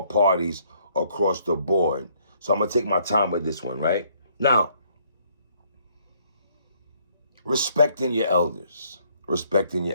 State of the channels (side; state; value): both; inverted; correlation -0.66